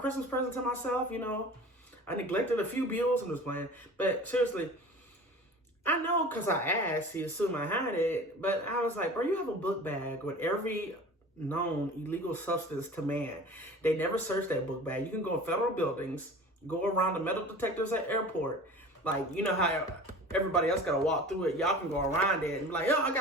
present to myself, I neglected a few bills and was playing. But seriously, I know because I asked, he assumed I had it. But I was like, bro, you have a book bag with every known illegal substance to man. They never searched that book bag. You can go in federal buildings, go around the metal detectors at airport. Like, you know how everybody else got to walk through it. Y'all can go around it and be like, oh, I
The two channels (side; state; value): both; normal; correlation 0.40